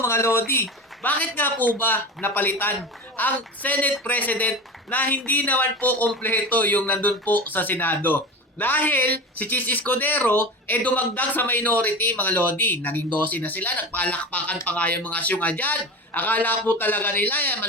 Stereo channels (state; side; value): normal; both; correlation 0.29